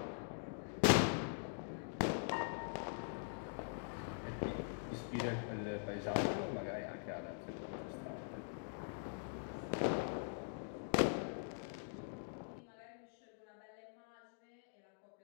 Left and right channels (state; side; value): silent; right; digital silence